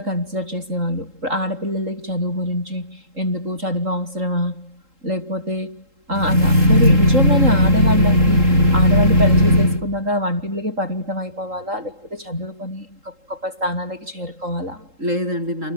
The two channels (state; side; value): late; left; 3.8 ms